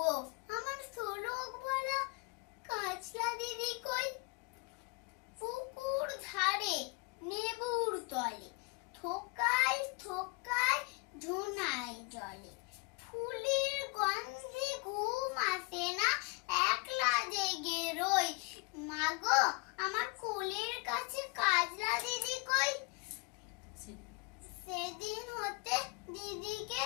আমার শোলক বলা কাজলা দিদি কই? পুকুর ধারে নেবুর তলে থোকায় থোকায় ঝুনায় জলে, ফুলের গন্ধে ঘুম আসে না, একলা জেগে রই, মাগো আমার কোলের কাছে কাজলা দিদি কই? সেদিন হতে দিদিকে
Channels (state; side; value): quieter; right; 30.3 dB